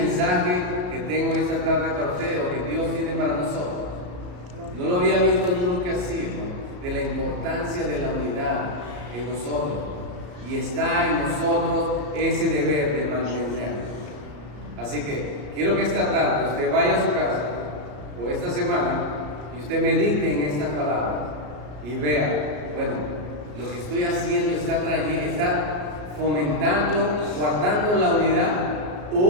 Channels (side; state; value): left; late; 34 ms